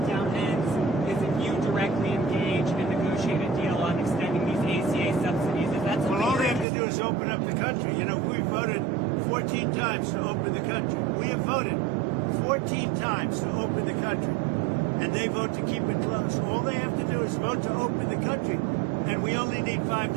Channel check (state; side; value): drops out; left; at 6.7 s